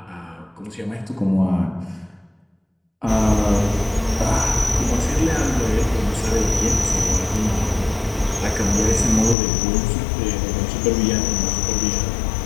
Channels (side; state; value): right; drops out; at 9.3 s